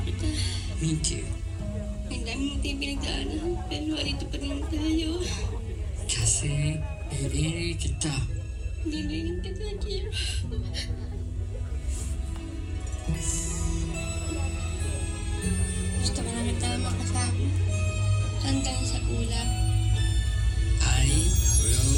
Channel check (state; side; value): identical; both; correlation 1.00